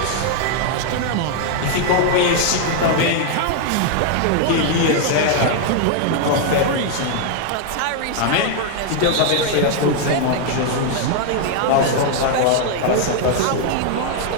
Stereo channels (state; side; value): different; both; correlation 0.00